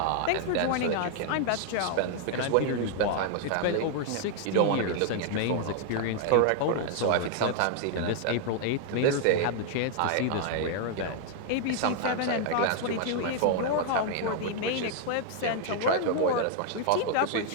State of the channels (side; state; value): both; different; correlation 0.00